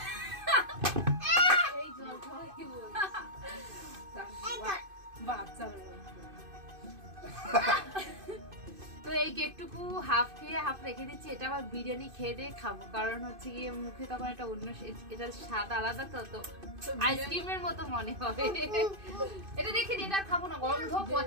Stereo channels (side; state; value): left; late; 2.5 ms